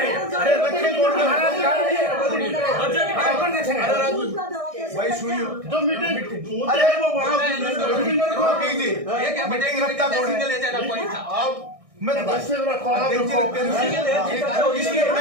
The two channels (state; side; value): late; left; 1.6 ms